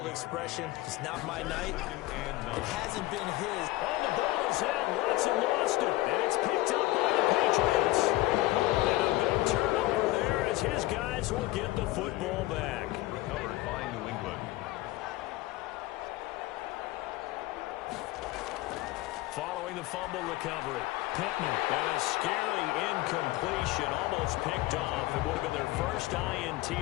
expression, it's not my night. It hasn't been his. Oh, the ball is out. Watson lost it. And it's picked up by the Patriots. And a big turnover there as his guys will get the football back. Recovered by New England. Following the fumble recovery, Pittman. And a scary incompletion, almost picked off. It would have been their first INT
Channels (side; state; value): right; quieter; 18.3 dB